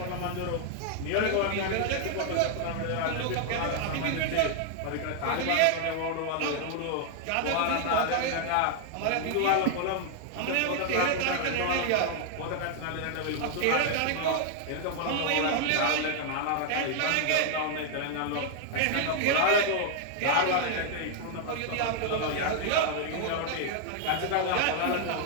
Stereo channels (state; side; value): different; both; correlation 0.00